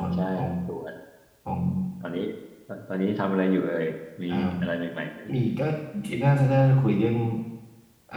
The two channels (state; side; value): identical; both; correlation 1.00